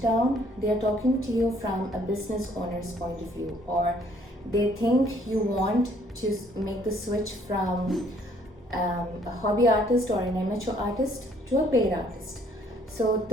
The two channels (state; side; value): normal; both; correlation 0.62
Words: down, they are talking to you from a business owner's point of view, or they think you want to make the switch from a hobby artist or an amateur artist to a paid artist. So